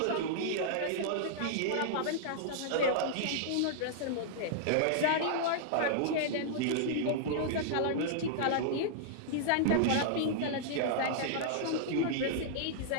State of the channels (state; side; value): different; both; correlation -0.01